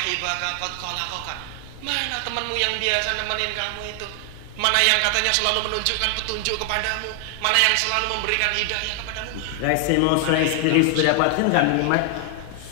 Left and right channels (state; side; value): different; both; correlation 0.00